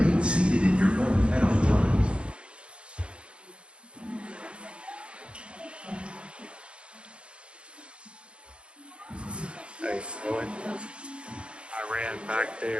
seated in your boat at all times. Nice. I ran back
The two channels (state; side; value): late; left; 0.057 ms